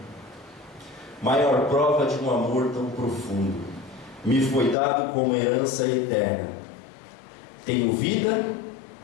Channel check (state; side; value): drops out; right; at 4.8 s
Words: maior prova de um amor tão profundo, me foi dado como herança eterna. Tenho vida,